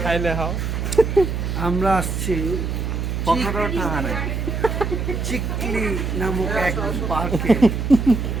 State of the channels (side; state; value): right; noise; hum, 2 dB below the sound